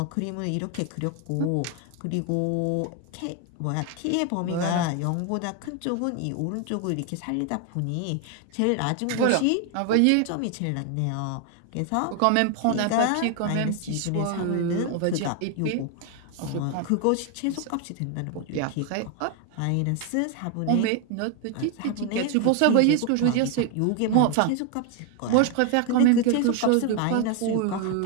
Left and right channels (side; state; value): both; different; correlation 0.01